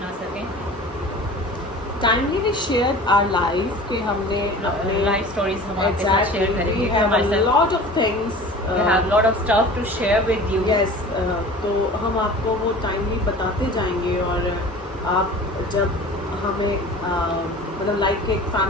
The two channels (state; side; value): normal; both; correlation 0.40